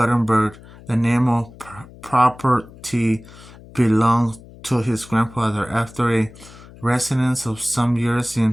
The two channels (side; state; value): left; noise; hum, 20 dB below the sound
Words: The name of property belonged to his grandfather. After a residence of some years